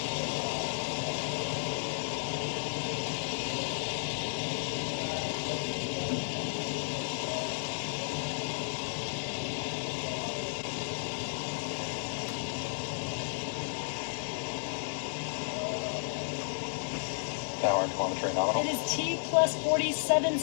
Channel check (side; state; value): right; silent; 56 dB below the other